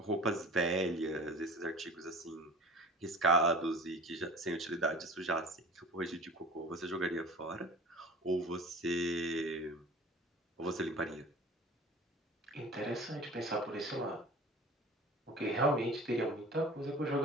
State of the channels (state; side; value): normal; both; correlation 0.41